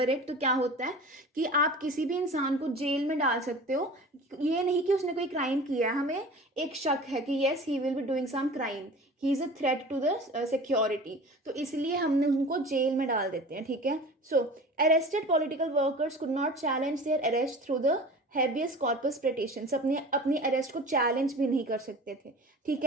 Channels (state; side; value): normal; both; correlation 0.38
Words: इट, तो क्या होता है कि आप किसी भी इंसान को जेल में डाल सकते हो, ये नहीं कि उसने कोई क्राइम किया है, हमें एक शक है कि yes he will be doing some crime, he is a threat to the security, तो इसलिए हमने उनको जेल में डाल देते हैं। ठीक है, so arrested political workers could not challenge their arrest through the habeas corpus petitions, अपनी अरेस्ट को चैलेंज भी नहीं कर सकते थे। ठीक